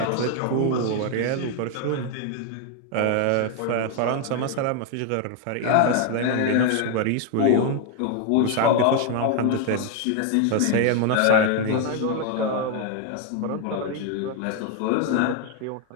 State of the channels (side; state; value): both; different; correlation 0.01